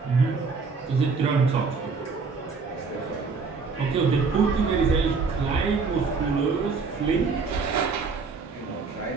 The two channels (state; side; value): quieter; left; 4.8 dB